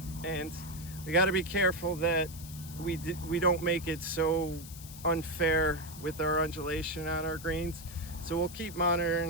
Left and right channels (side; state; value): left; noise; hiss, 15 dB below the sound